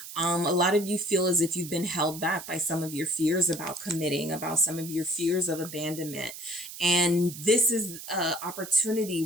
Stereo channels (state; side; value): noise; right; hiss, 12 dB below the sound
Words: A lot of you feel as if you've been held back by some of your fears about committing, about some of your fears of abandonment. And this is an opportunity